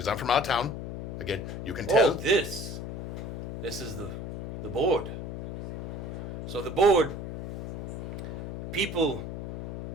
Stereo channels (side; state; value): left; noise; hum, 6 dB below the sound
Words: I'm from out of town. Again, you can tell. Oh, this is the board. So the board, people